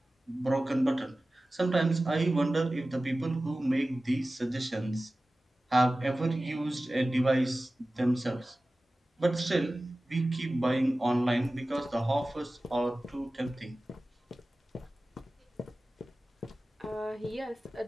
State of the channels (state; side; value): normal; both; correlation 0.96